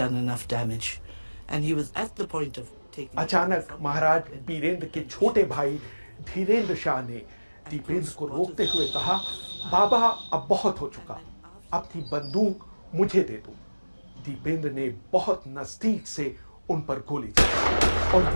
enough damage. And he was at the point of taking... अचानक महाराज बीरेंद्र के छोटे भाई धीरेंद्र शाह ने दीपेंद्र को रोकते हुए कहा, बाबा अब बहुत हो चुका, अपनी बंदूक मुझे दे दो। दीपेंद्र ने बहुत नजदीक से उन पर गोली चलाई और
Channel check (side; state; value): both; inverted; correlation -1.00